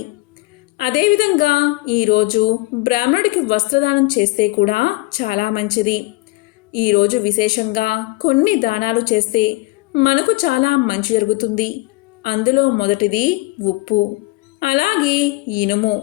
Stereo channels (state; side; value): quieter; right; 22.3 dB